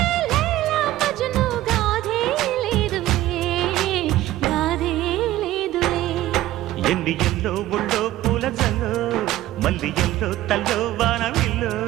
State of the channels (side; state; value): left; quieter; 15.1 dB